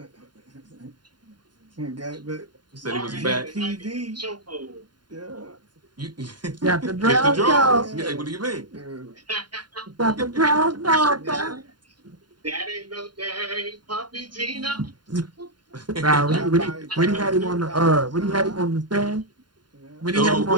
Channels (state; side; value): late; left; 0.71 ms